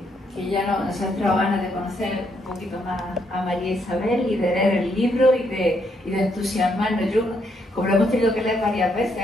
ya nos ha entrado ganas de conocer un poquito más a María Isabel y de leer el libro y de entusiasmarnos. Yo, como lo hemos tenido que leer varias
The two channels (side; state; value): both; normal; correlation 0.75